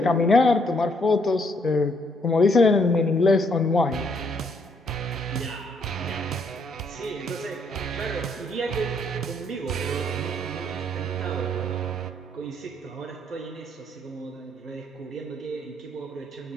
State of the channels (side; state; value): both; normal; correlation 0.70